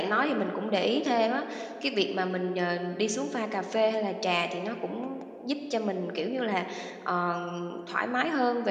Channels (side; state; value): both; identical; correlation 1.00